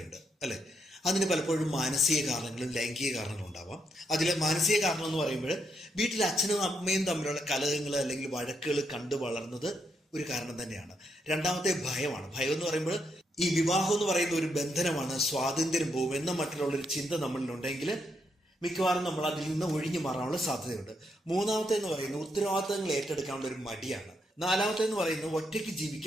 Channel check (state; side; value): normal; both; correlation 0.78